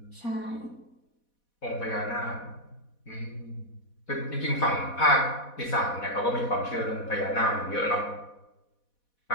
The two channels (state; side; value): late; right; 4.1 ms